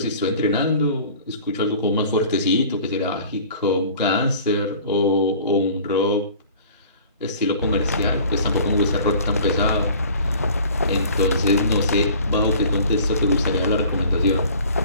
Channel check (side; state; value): both; inverted; correlation -0.48